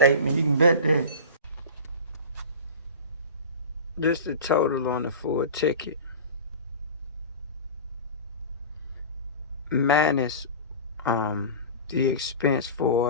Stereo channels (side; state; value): both; inverted; correlation -0.32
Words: You can bet that. Just the total on the full ticket. Minus the expense